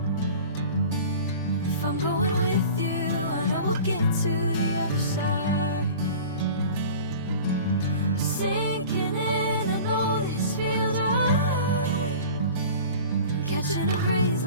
If I'm going with you, I know we'll get to the other side. Sinking in, I know this feels right. Catching a breeze,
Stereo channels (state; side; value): inverted; both; correlation -0.40